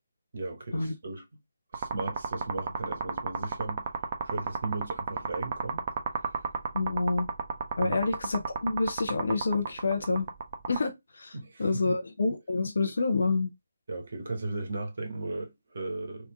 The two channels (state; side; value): inverted; both; correlation -0.83